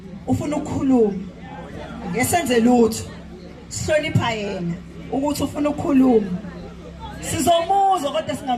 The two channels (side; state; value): both; identical; correlation 1.00